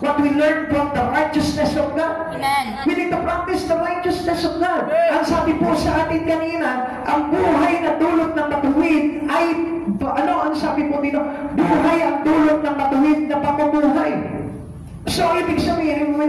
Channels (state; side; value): identical; both; correlation 1.00